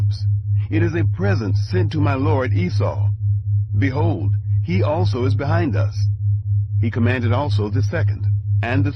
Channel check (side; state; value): both; identical; correlation 1.00